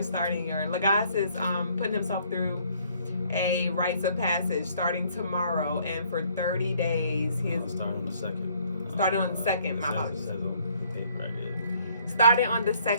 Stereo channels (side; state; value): both; inverted; correlation -0.63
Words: starting your Logas is putting himself through a rites of passage starting tomorrow, and for 30 days he is starting on the 2nd. Starting on the 2nd, my apologies. It says on paper right here. Starting on the